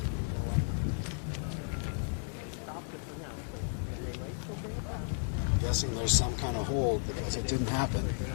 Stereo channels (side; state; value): right; silent; 55 dB below the other